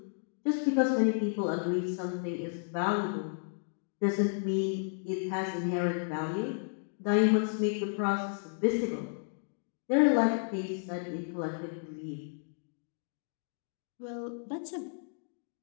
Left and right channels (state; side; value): silent; right; digital silence